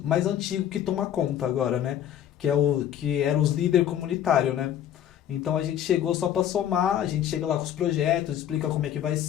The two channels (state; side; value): quieter; right; 10.5 dB